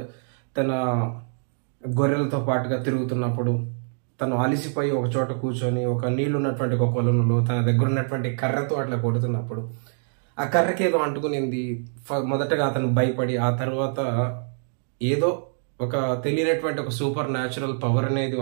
తన గొర్రెలతో పాటుగా తిరుగుతున్నప్పుడు తను అలిసిపోయి ఒక చోట కూర్చొని ఒక నీళ్ళు ఉన్నటువంటి ఒక కొలంలో తన దగ్గర ఉన్నటువంటి కర్రతో అట్లా కొడుతున్నప్పుడు ఆ కర్రకి ఏదో అంటుకునింది. మొదటగా అతను భయపడి ఆ తర్వాత ఏదో ఒక తెలియనటువంటి ఒక సూపర్ న్యాచురల్ పవర్ అనేది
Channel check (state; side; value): silent; left; digital silence